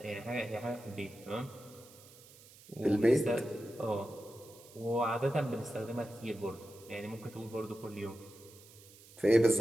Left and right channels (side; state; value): right; noise; hiss, 22 dB below the sound